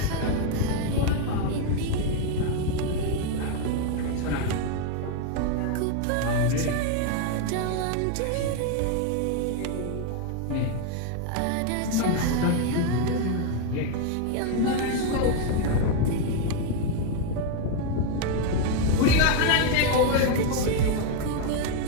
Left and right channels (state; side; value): different; both; correlation 0.01